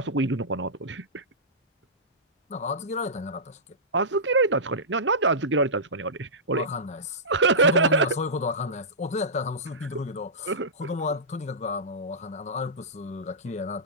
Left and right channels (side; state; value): both; normal; correlation -0.17